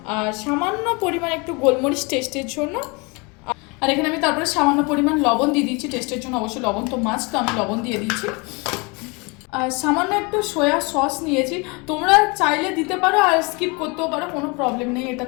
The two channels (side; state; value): right; quieter; 28.9 dB